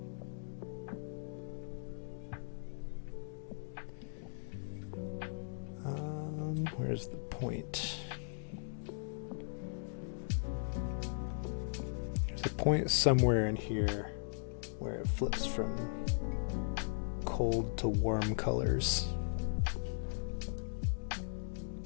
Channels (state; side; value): silent; right; digital silence